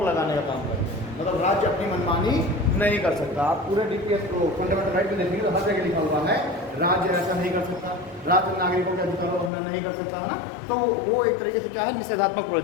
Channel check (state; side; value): drops out; right; at 9.5 s